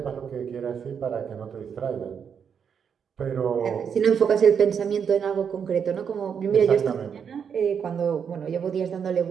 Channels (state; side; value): quieter; left; 7.2 dB